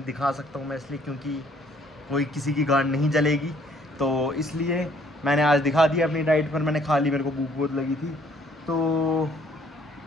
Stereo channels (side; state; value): both; normal; correlation 0.62